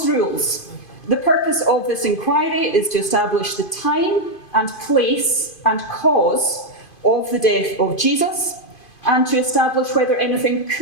rules, the purpose of this inquiry is to establish the time and place and cause of the death of Jesus, and to establish whether anything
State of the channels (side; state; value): right; late; 2.5 ms